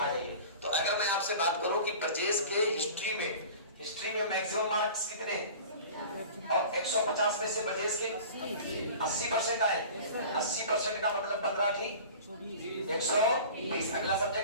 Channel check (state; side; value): inverted; both; correlation -0.40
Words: जाइए। तो अगर मैं आपसे बात करूं कि ब्रजेश के हिस्ट्री में मैक्सिमम मार्क्स कितने और 150 में से ब्रजेश के 80% आए। 80% का मतलब 15 ठीक 120। अगला